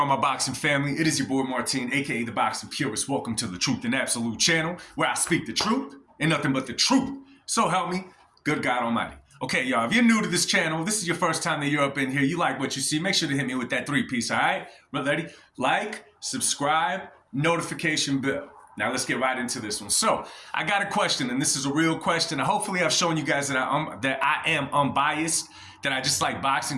my boxing family? It is your boy Martin, aka the Boxing Purist. Welcome to the Truth and Absolute channel, where I speak the truth and nothing but the truth. So help me, good God Almighty. Okay, y'all, if you're new to this channel, this is your first time that you're up in here, you like what you see, make sure to hit me with that 3-piece, all right? Ready? Like, subscribe, notification bell. Now let's get right into this one. So I got a question, and this is a real question. Hopefully I've shown you guys that I am unbiased, that I just like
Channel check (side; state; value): both; identical; correlation 1.00